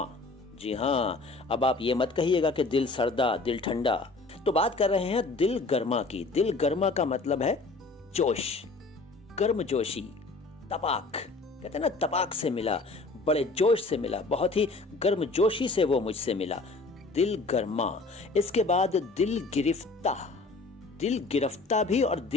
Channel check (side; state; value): right; quieter; 3.6 dB